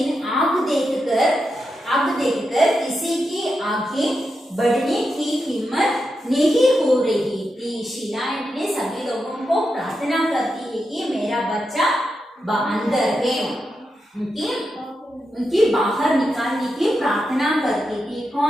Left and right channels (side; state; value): both; normal; correlation 0.87